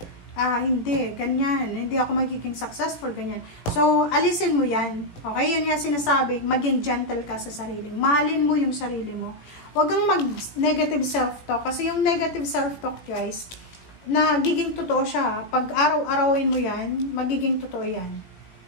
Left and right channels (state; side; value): late; right; 17 ms